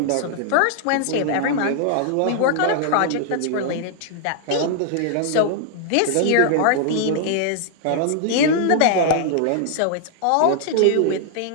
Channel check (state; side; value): different; both; correlation -0.01